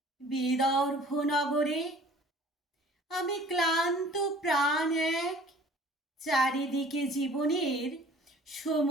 বিদর্ভ নগরে। আমি ক্লান্ত প্রাণ এক, চারিদিকে জীবনের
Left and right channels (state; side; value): normal; both; correlation 0.50